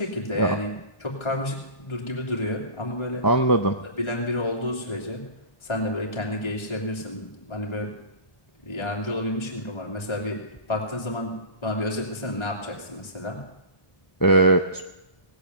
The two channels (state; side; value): late; right; 1.3 ms